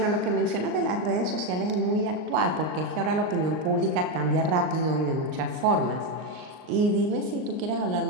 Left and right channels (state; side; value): late; left; 39 ms